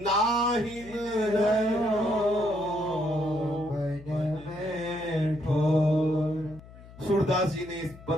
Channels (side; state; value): left; noise; hum, 19 dB below the sound